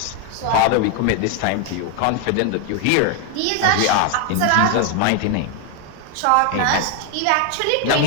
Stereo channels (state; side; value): different; both; correlation 0.01